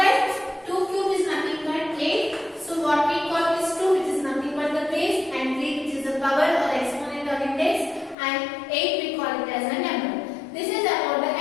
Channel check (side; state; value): right; drops out; at 8.2 s